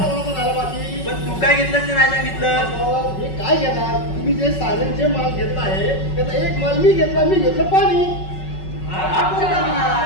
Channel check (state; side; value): late; right; 5.3 ms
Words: झालं बाकी? पण तू काय घेतलं ते नाही सांगितलं. हे काय घेणार? तुम्ही जे सारे जे माल घेतला आहे त्याचा एक माल मी घेतला, मी घेतलं पाणी. हा कोणता